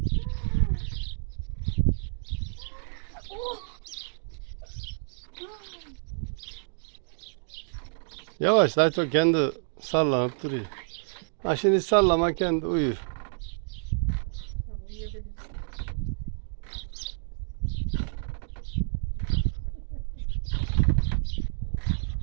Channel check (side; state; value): left; silent; digital silence